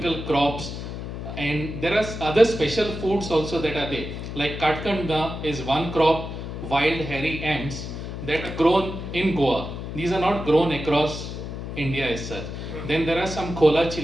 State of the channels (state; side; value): noise; left; hum, 7 dB below the sound